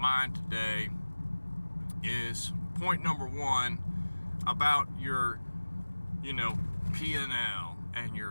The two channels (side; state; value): both; inverted; correlation -1.00